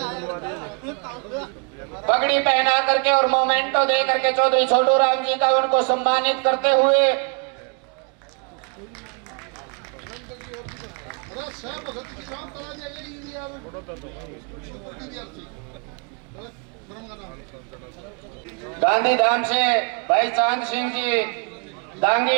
पगड़ी पहना करके और मोमेंटो दे करके चौधरी छोटू राम जी का उनको सम्मानित करते हुए गांधीधाम से भाई चांद सिंह जी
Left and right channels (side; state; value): left; quieter; 35.2 dB